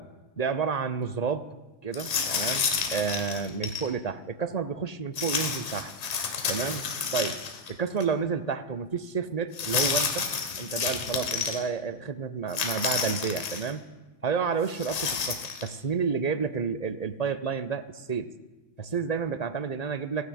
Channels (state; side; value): late; right; 1.8 ms